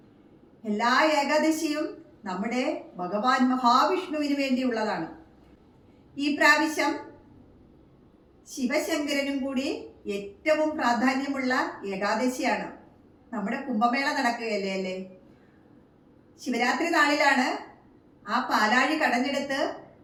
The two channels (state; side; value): identical; both; correlation 1.00